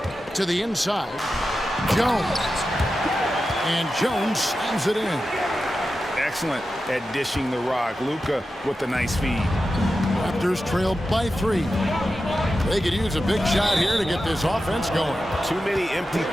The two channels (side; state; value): both; normal; correlation 0.91